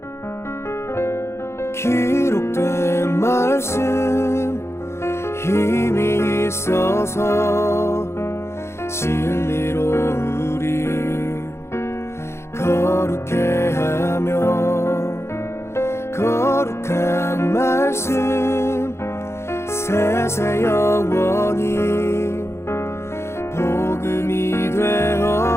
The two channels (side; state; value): right; late; 0.13 ms